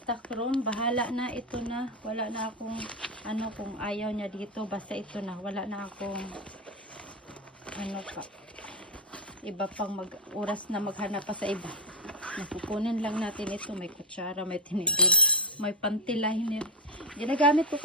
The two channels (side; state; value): both; normal; correlation 0.05